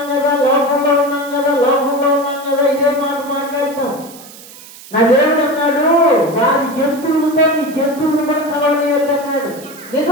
కదా, లోకంలో ఉన్నాం కదా, లోకంలో ఉన్నాం కదా, ఇదే మాట మాట్లాడతాం. నా దేవుడు అన్నాడు, వారి జంతువులతో నీ జంతువులు కూడా కలవలేయద్దు అన్నాడు.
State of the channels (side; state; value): right; noise; hiss, 19 dB below the sound